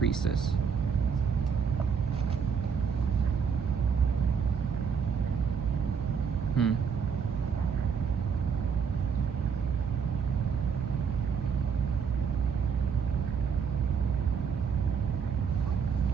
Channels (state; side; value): quieter; left; 6.5 dB